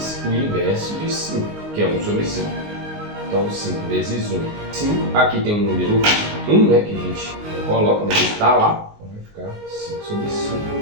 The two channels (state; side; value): late; left; 19 ms